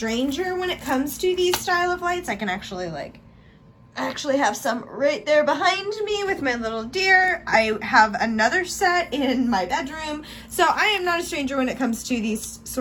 when it comes to these style of lights. I can actually have some right there behind me with my little deer. I have another set in my bedroom. So I am not a stranger when it comes to these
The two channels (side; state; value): both; identical; correlation 1.00